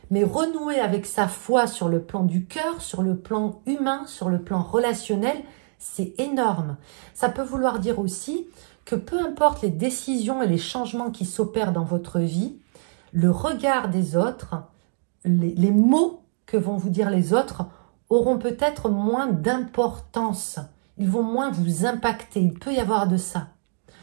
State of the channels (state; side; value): silent; left; digital silence